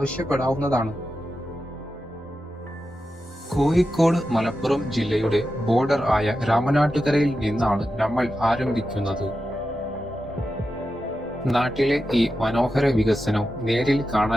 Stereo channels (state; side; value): normal; both; correlation 0.90